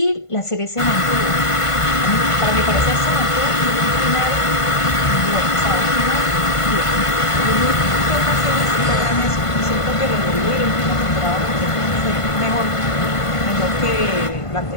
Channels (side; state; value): right; late; 1.5 ms